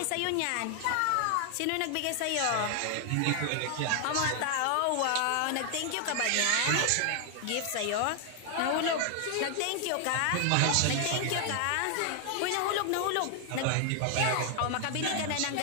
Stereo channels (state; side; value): different; both; correlation 0.00